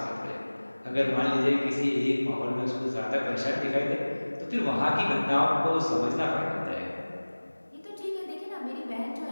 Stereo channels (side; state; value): both; inverted; correlation -1.00